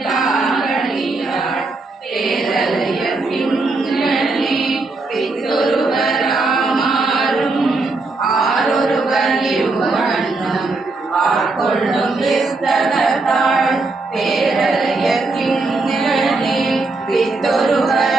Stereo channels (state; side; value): quieter; left; 3.4 dB